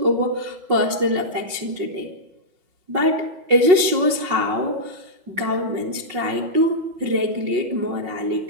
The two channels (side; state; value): left; late; 5.5 ms